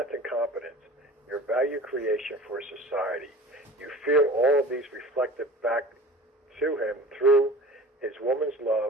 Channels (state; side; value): normal; both; correlation 0.40